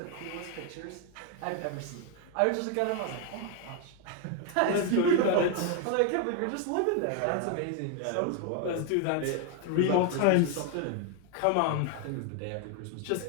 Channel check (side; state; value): both; different; correlation 0.01